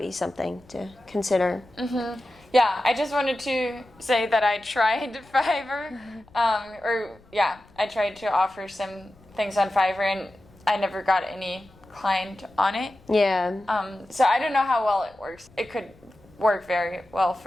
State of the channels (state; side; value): noise; left; rumble, 28 dB below the sound